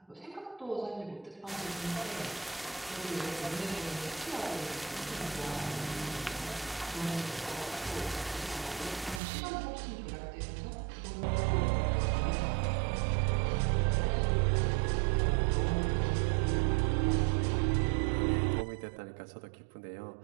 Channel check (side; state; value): left; drops out; at 9.2 s